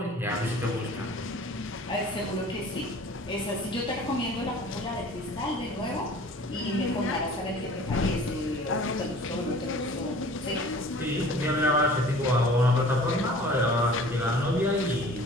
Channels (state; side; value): normal; both; correlation 0.46